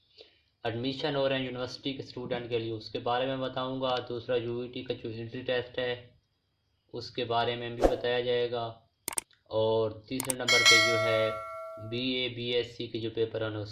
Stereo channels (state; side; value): identical; both; correlation 1.00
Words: एडमिशन हो रहे हैं यूनिवर्सिटी के स्टूडेंट के लिए उसके बारे में बताऊँगा। दूसरा यूईटी का जो एंट्री टेस्ट है उसके बारे में भी बताया जाएगा, और तीसरे नंबर पे जो है बीए बीएससी के जो पेपर हैं